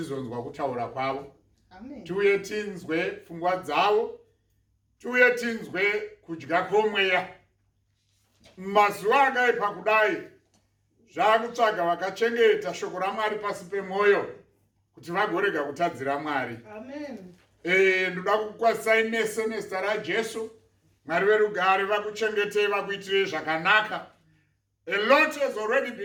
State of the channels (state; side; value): identical; both; correlation 1.00